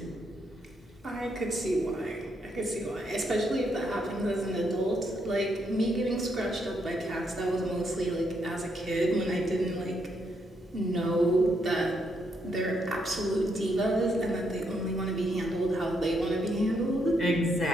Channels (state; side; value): normal; both; correlation 0.77